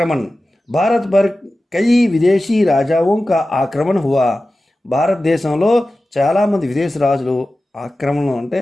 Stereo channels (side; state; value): both; normal; correlation 0.95